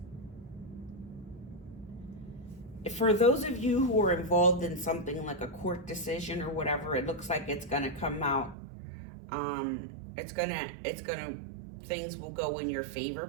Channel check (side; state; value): left; drops out; at 8.6 s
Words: For those of you who are involved in something like a court decision or whatever, it looks like it's going to come out. Things will go in your favor,